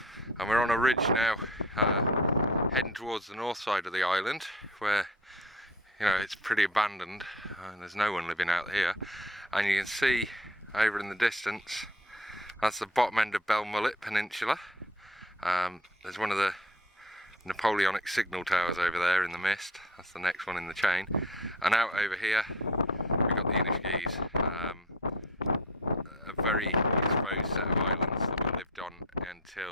and we're on a ridge now, heading towards the north side of the island, where it's pretty abandoned and there's no one living out here. And you can see over in the distance, that's the bottom end of Belmullet Peninsula. There's one of the Napoleonic signal towers over there in the mist. That's the next one in the chain. And out over here we've got the Annagh, a very exposed set of islands that we lived on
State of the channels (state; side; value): normal; both; correlation 0.41